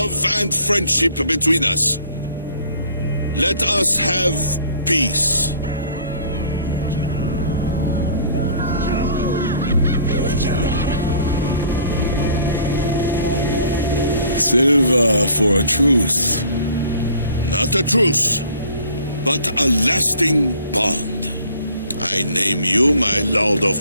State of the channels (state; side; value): inverted; both; correlation -0.53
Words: and friendship between us. Let us have peace. Silver for a truce. Not a truce, but a lasting bond. I name you my Lord of